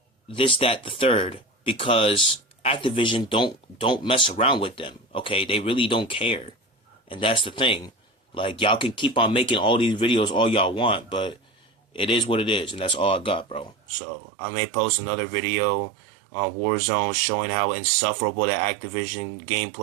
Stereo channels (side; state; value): left; drops out; at 13.8 s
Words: this, that, the third, because Activision don't mess around with them. Okay? They really don't care. And that's the thing. Like, y'all can keep on making all these videos all y'all want, but it is what it is, and that's all I got, bro. So, I may post another video on Warzone showing how insufferable that Activision